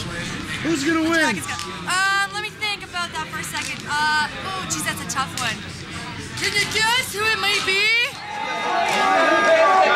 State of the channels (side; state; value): both; identical; correlation 1.00